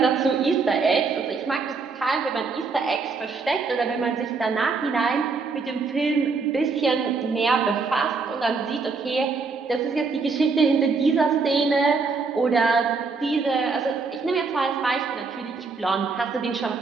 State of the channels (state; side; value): quieter; left; 4.5 dB